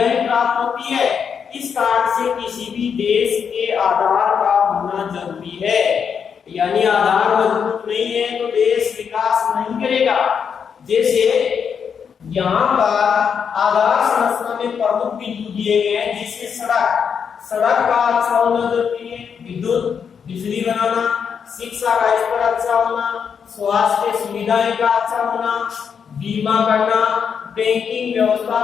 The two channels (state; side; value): quieter; right; 6.9 dB